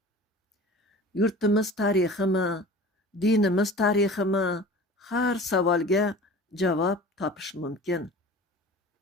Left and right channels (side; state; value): both; normal; correlation 0.40